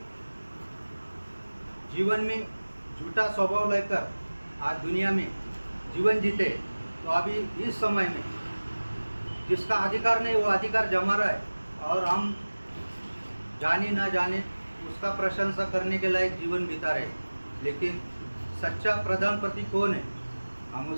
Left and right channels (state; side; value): inverted; both; correlation -1.00